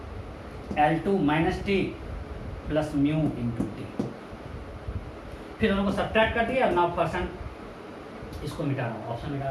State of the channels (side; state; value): both; identical; correlation 1.00